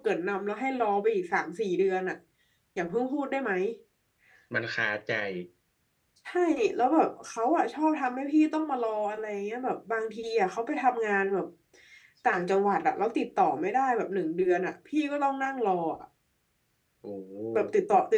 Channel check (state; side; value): identical; both; correlation 1.00